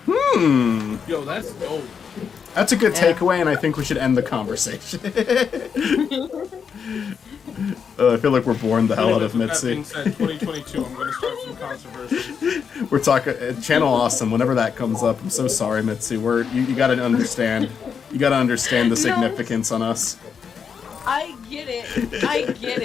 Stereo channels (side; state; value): right; quieter; 6.7 dB